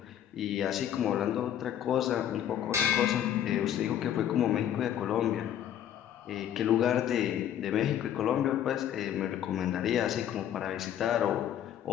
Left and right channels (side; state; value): right; quieter; 10.5 dB